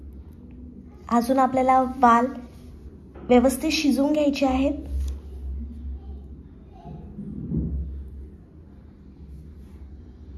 अजून आपल्याला वाल व्यवस्थित शिजवून घ्यायचे आहेत.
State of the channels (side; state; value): both; identical; correlation 1.00